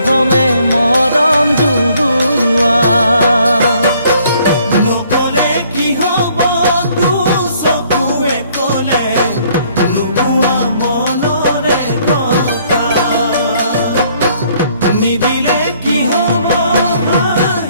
মৰম জুৰুৱা নকলে কি হ'ব চকুৱে কলে নোকোৱা মনৰে কথা নিদিলে কি হ'ব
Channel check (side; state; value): both; inverted; correlation -0.63